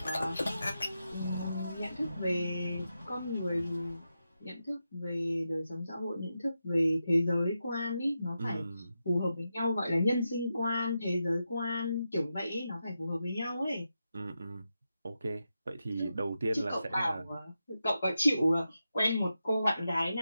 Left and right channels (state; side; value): inverted; both; correlation -0.88